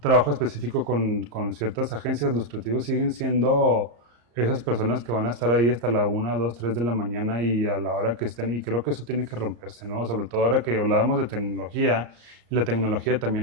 trabajo específico con ciertas agencias, los creativos siguen siendo esas personas que van a estar ahí hasta la 1, 2, 3 de la mañana y a la hora que estén, y creo que eso tiene que romperse, ¿no? Sobre todo ahora que hablábamos de tecnología, la tecnología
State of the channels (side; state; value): left; late; 34 ms